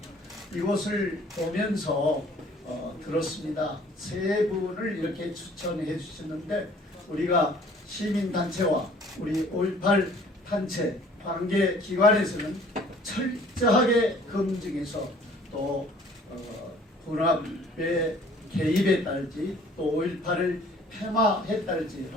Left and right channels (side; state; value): both; normal; correlation 0.54